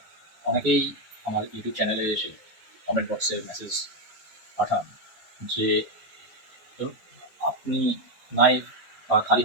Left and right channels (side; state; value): both; normal; correlation 0.05